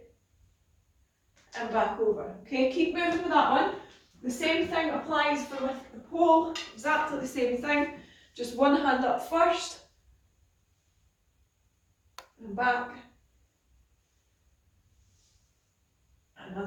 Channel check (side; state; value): both; identical; correlation 1.00